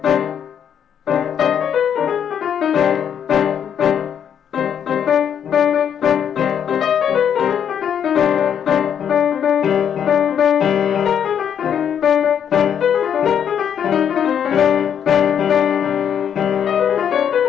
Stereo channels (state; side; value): quieter; right; 8.6 dB